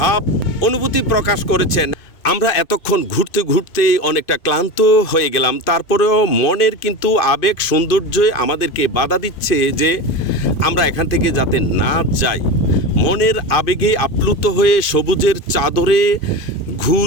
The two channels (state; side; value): late; right; 2.5 ms